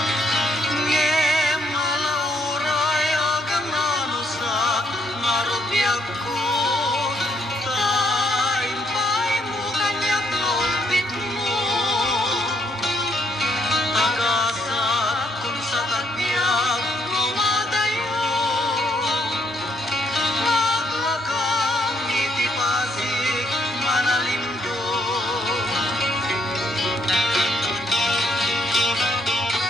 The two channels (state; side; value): normal; both; correlation 0.72